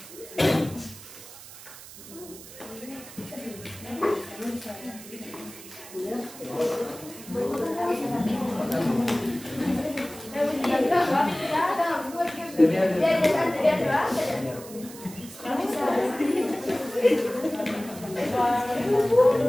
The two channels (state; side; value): noise; right; hiss, 16 dB below the sound